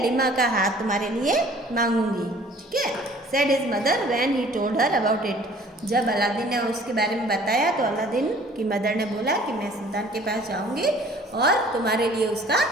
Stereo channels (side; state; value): both; normal; correlation 0.52